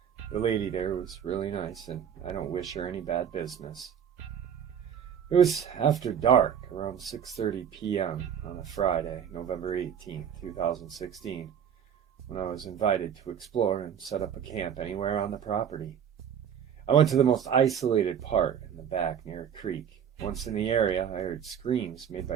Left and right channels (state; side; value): quieter; left; 8.5 dB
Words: The lady there was really nice, and I don't wish her any bad business. It was after dark, around 6:30 p.m. on a Friday, November 18th, 2016, when I was invited to explore and set up a camp anywhere on the property. I went to the most isolated part in the back near a creek. Once in the area, I heard screams made